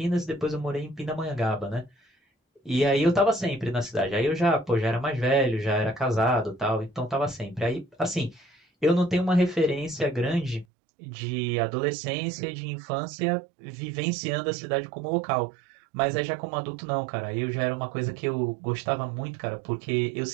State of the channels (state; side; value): drops out; left; at 10.7 s